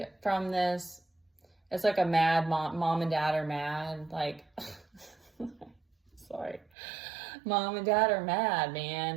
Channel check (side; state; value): left; drops out; at 6.7 s